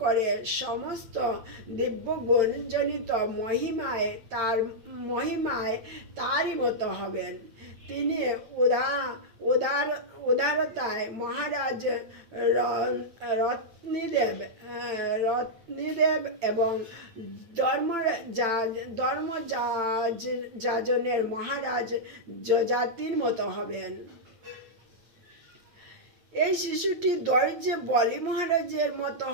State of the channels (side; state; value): left; late; 8.8 ms